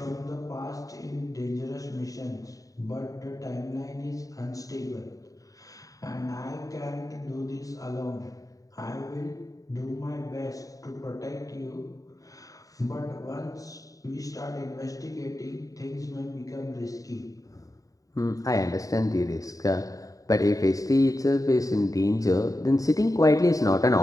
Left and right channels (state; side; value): late; right; 0.16 ms